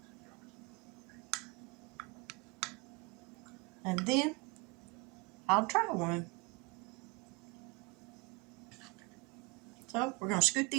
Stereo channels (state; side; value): quieter; left; 27.4 dB